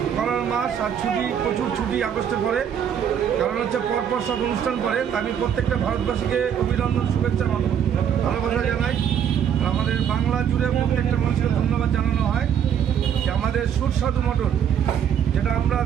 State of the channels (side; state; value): left; quieter; 8.7 dB